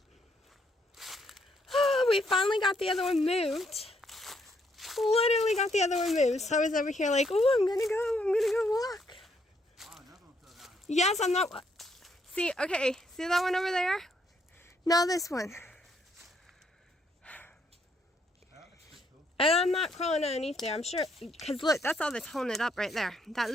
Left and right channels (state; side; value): normal; both; correlation 0.72